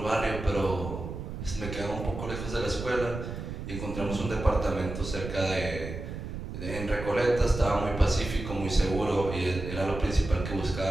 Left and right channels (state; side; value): noise; right; rumble, 7 dB below the sound